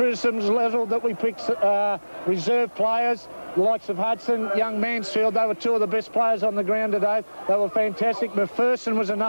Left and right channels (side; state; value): both; inverted; correlation -1.00